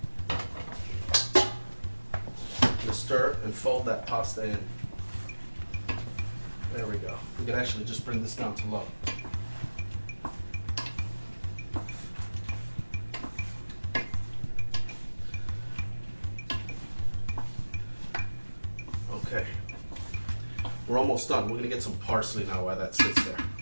Just stir and fold that pasta in. There we go. We can actually just bring this down to low. Okay. We're almost done. We're going to get some parsley now while that sits there.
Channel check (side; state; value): both; inverted; correlation -1.00